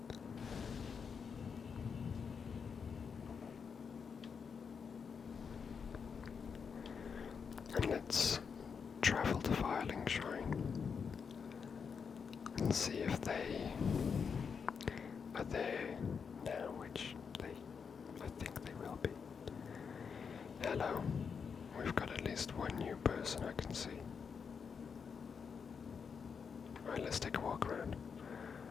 And let's travel to Firling Shrine and see if they are there now, which I think they will be. Hello. We've got at least one new person I can see. Alright, let's take a walk around.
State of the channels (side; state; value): right; quieter; 6.2 dB